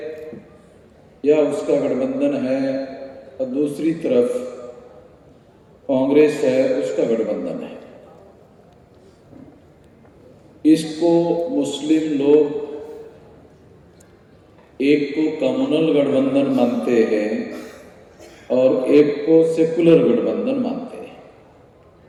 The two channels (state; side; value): identical; both; correlation 1.00